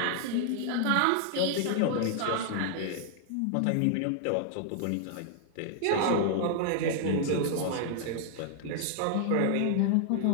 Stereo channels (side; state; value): both; different; correlation -0.01